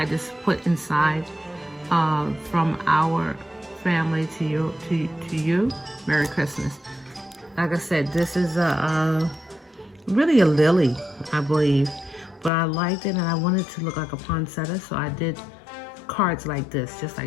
just put inside from our family to you, Merry Christmas. Like I said, this is really a lily, I believe, but I liked it, and I wanted to look like a poinsettia, so I did cards like this, just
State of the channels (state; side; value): drops out; right; at 12.5 s